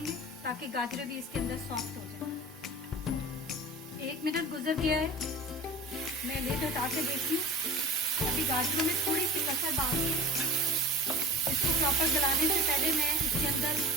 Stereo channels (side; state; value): both; normal; correlation 0.37